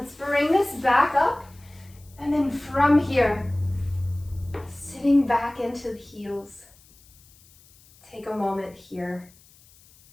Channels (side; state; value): left; noise; hiss, 27 dB below the sound